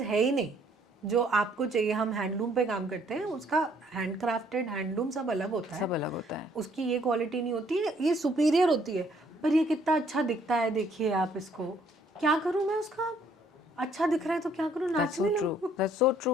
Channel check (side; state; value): both; normal; correlation 0.64